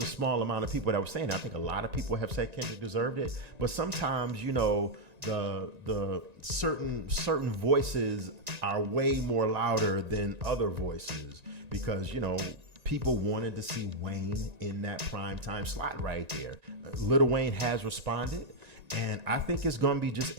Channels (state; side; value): late; left; 1.9 ms